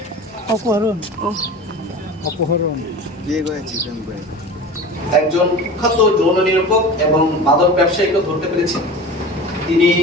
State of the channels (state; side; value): normal; both; correlation 0.35